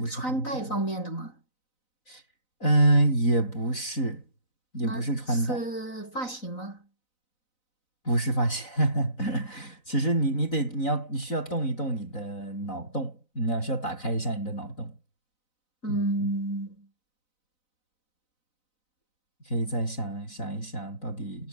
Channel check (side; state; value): right; late; 4.0 ms